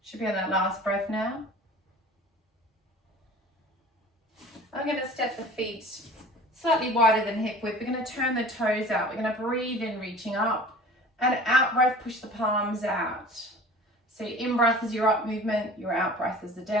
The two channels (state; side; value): normal; both; correlation 0.43